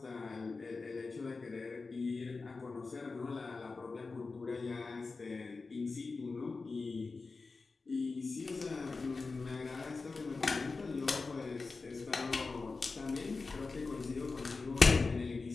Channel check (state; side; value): quieter; right; 4.1 dB